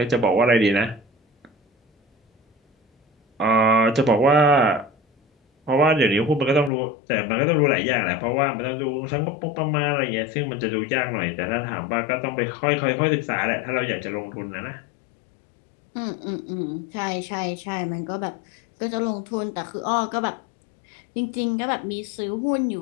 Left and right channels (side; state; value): right; drops out; at 6.7 s